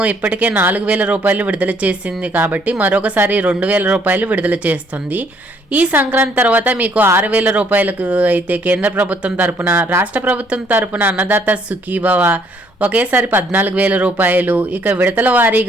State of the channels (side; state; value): both; normal; correlation 0.65